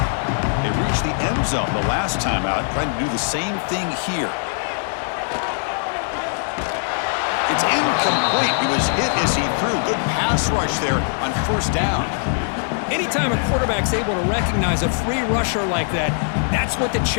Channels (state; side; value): silent; right; digital silence